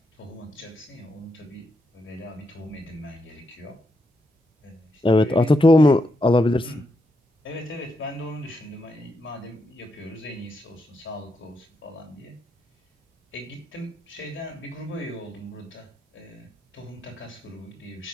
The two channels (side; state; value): both; normal; correlation 0.82